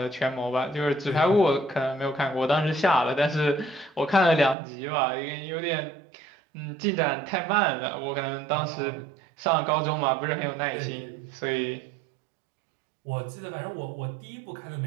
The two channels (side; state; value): left; drops out; at 4.5 s